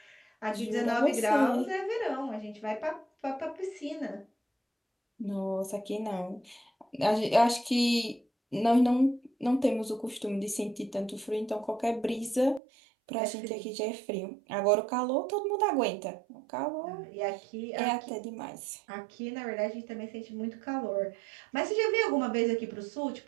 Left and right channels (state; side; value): drops out; left; at 12.6 s